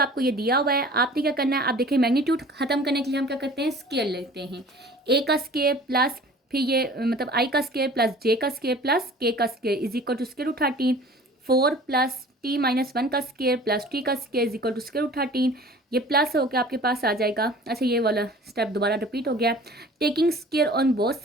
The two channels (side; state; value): both; normal; correlation 0.45